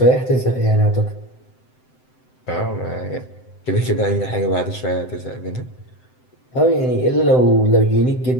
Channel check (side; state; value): right; late; 7.8 ms